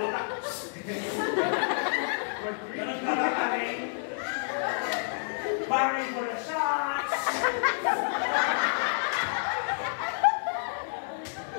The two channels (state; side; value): silent; right; digital silence